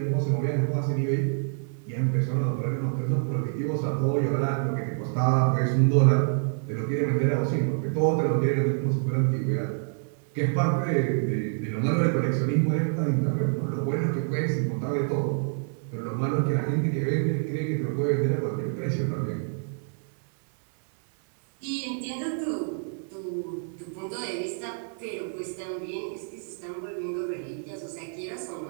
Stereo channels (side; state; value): left; silent; 60 dB below the other